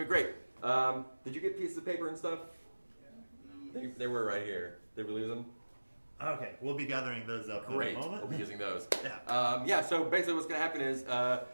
be great. Did you get pieces of paper and stuff? They were right here. Did we lose them? Okay, we'll be gathering those up Great. in a moment. We'll be using those. Yeah. So basically what's going to happen is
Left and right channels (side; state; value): both; inverted; correlation -1.00